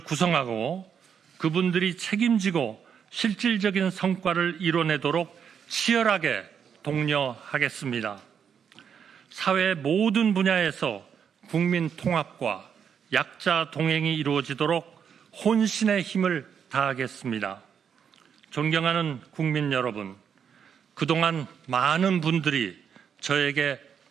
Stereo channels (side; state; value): left; quieter; 7.5 dB